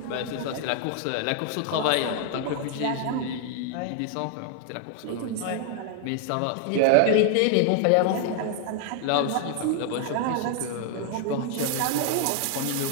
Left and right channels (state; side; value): different; both; correlation 0.00